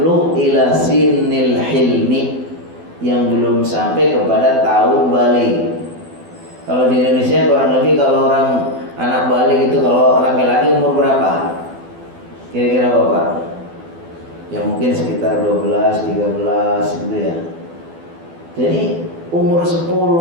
ila sinnil hilmi, yang belum sampai kepada tahun balik. Kalau di Indonesia kurang lebih kalau orang anak balik itu kalau laki-laki umur berapa? Kira-kira Bapak? Ya mungkin sekitar 12, 13 gitu ya. Jadi umur 10,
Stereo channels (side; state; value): left; late; 12 ms